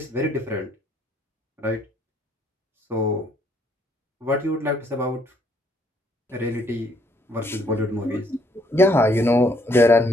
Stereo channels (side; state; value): both; normal; correlation 0.67